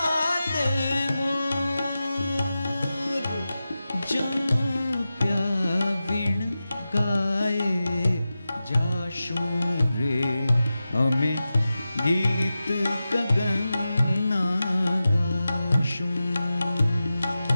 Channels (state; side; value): inverted; both; correlation -0.94